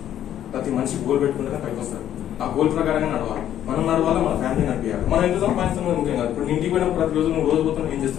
ప్రతి మనిషి గోల్ పెట్టుకుంటేనే పైకి వస్తారు. ఆ గోల్ ప్రకారంగా నడవాలి. మనం నడవాలి, మన ఫ్యామిలీ నడిపించాలి. మనం ఎంత సంపాదిస్తున్నాం ఇంకేం కాదు. ఇప్పుడు ఇంటికి పోయిన ప్రతి రోజు నువ్వు రోజు పోతున్నావు ఏం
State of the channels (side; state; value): right; quieter; 11.1 dB